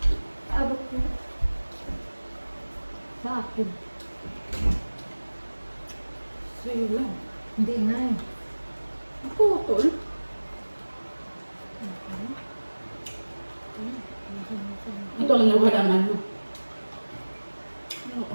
Abot mo. Sa akin. Sa'yo lang. Hindi nga eh. Putol. Ito ang nawala ng ano. Ang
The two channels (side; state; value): both; inverted; correlation -1.00